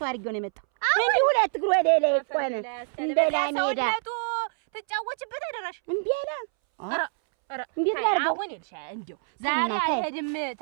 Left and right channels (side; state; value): left; silent; 61 dB below the other